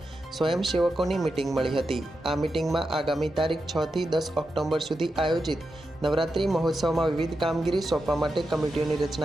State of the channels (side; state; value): both; normal; correlation 0.88